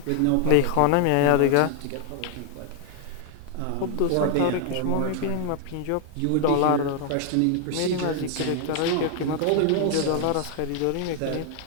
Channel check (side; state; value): both; different; correlation 0.00